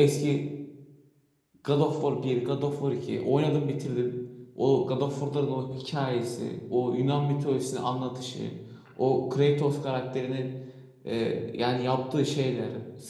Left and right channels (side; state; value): both; identical; correlation 1.00